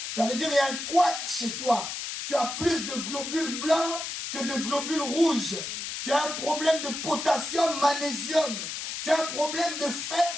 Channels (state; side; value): noise; left; hiss, 5 dB below the sound